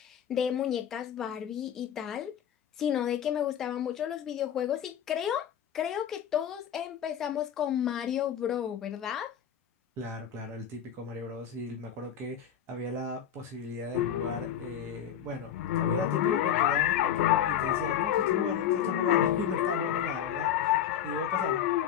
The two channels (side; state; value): right; quieter; 9.4 dB